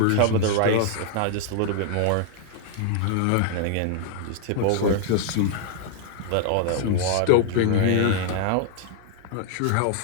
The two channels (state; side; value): different; both; correlation 0.00